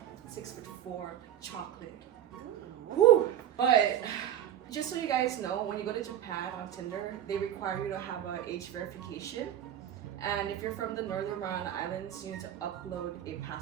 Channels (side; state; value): left; quieter; 10.9 dB